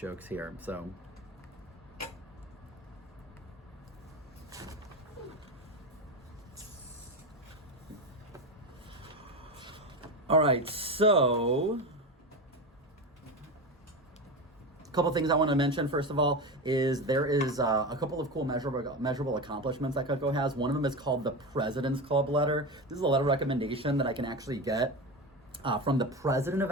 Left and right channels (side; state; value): both; normal; correlation 0.21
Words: here. So. All right, so a couple things I want to mention. First of all, is there is a couple of cool measurable accomplishments that Cutco has. One of them is called the President's Club letter. This is a letter of recommendation that I can actually get from the president of